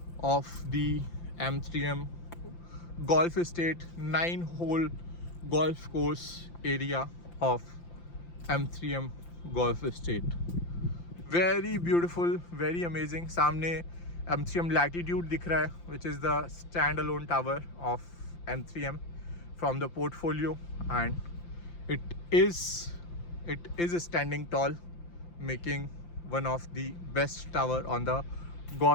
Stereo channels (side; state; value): right; late; 5.8 ms